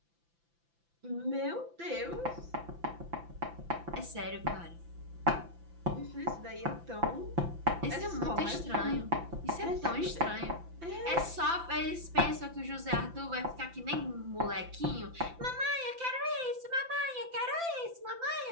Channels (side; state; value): left; late; 5.9 ms